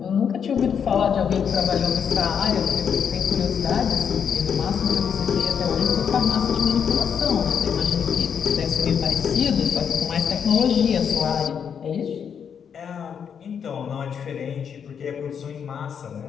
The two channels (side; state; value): right; quieter; 7.5 dB